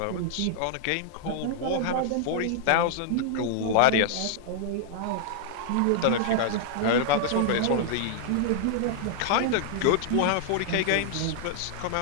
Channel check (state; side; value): different; both; correlation -0.01